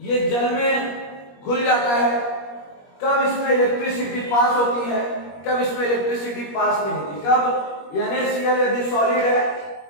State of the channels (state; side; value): late; right; 21 ms